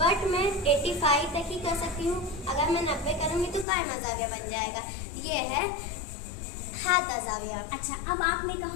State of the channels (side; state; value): right; drops out; at 3.7 s